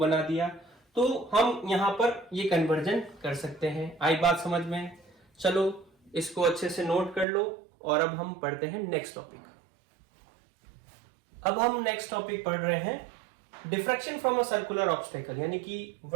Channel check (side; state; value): left; drops out; at 7.2 s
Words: दिया, तो हम यहां पर ये कन्वर्जन कर सकते हैं। आई बात समझ में, चलो इसको अच्छे से नोट कर लो, और अब हम पढ़ते हैं नेक्स्ट टॉपिक। अब हम नेक्स्ट टॉपिक पढ़ रहे हैं diffraction from a circular obstacle, यानी कि